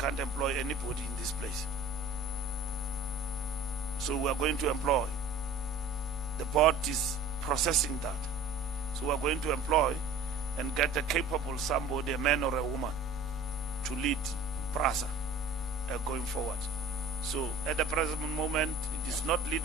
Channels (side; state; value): left; quieter; 3.4 dB